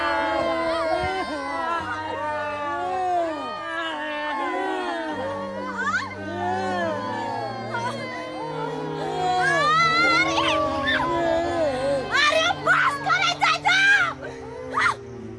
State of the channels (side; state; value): both; identical; correlation 1.00